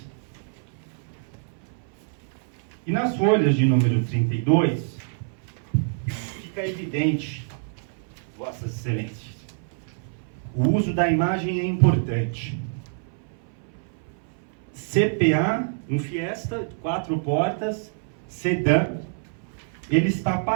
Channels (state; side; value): silent; left; 59 dB below the other